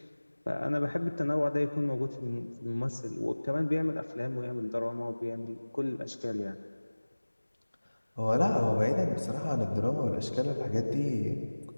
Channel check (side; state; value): both; inverted; correlation -1.00